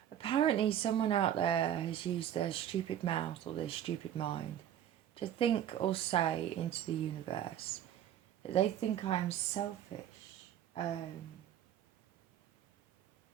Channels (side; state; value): left; quieter; 10.7 dB